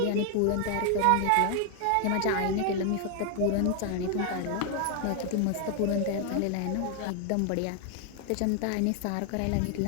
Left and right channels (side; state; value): both; different; correlation 0.00